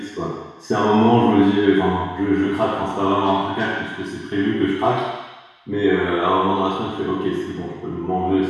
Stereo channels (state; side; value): identical; both; correlation 1.00